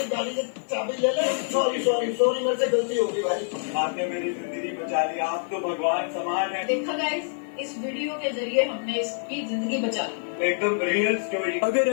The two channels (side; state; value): right; silent; 56 dB below the other